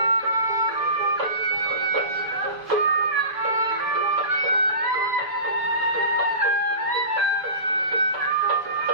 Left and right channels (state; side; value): late; left; 6.9 ms